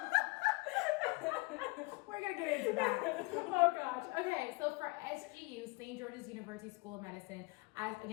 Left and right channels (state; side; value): quieter; right; 25.9 dB